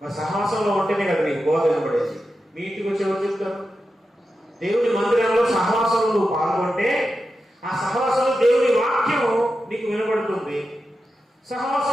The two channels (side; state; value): both; normal; correlation 0.90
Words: మరి సహవాసంలో ఉంటేనే కదా నీకు బోధ వినబడేది. మీ ఇంటికి వచ్చి ఎవరు చెప్తారు? దేవుని మందిరంలో సహవాసంలో నువ్వు పాల్గొంటే ఆ సహవాసంలో దేవుని వాక్యం నీకు వినబడుతుంది.